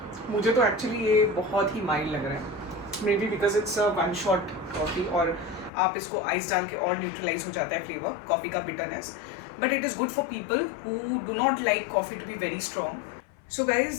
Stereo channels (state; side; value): drops out; right; at 5.7 s